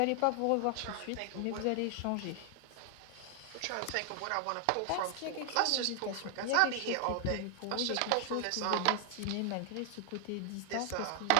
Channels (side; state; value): both; different; correlation 0.00